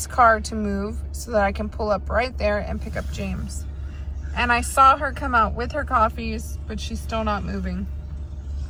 car to move so that I can pull up right there and pick up James. And I saw her come out with her coffees, but she's still not moving.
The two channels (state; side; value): identical; both; correlation 1.00